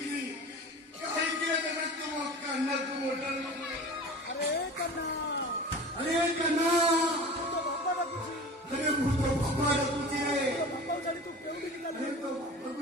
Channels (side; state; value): both; normal; correlation 0.37